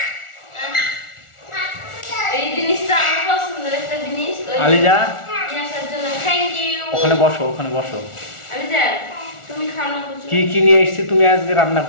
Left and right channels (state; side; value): late; right; 1.4 ms